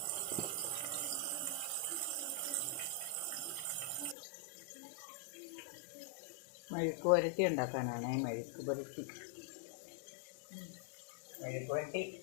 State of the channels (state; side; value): drops out; right; at 4.2 s